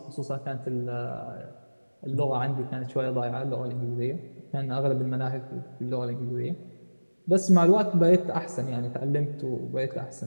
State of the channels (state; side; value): inverted; both; correlation -1.00